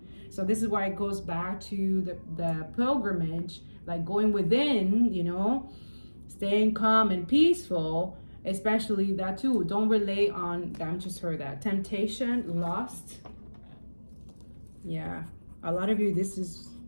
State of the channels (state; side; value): inverted; both; correlation -1.00